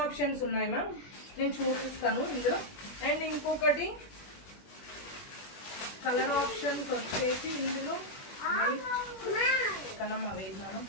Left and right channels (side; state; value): right; late; 21 ms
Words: ఆప్షన్స్ ఉన్నాయి మ్యామ్, నేను చూపిస్తాను ఇందులో. అండ్ ఇంకొకటి కలర్ ఆప్షన్స్ వచ్చేసి ఇందులో కనమ్మ వేసినాను.